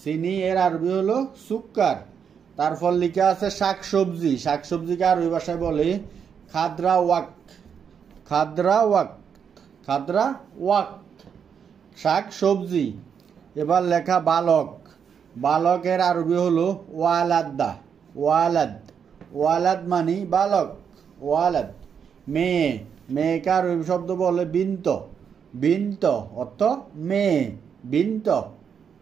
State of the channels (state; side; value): quieter; left; 7.3 dB